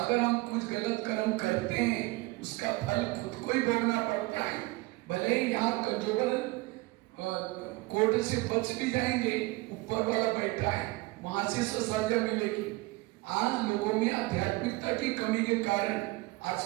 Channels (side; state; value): left; quieter; 22.2 dB